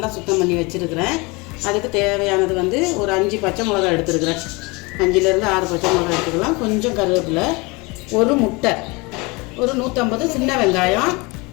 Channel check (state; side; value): quieter; right; 26.4 dB